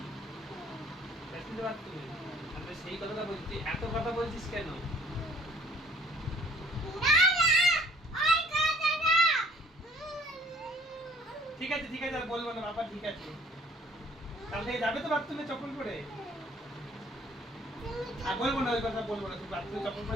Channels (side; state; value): both; normal; correlation 0.57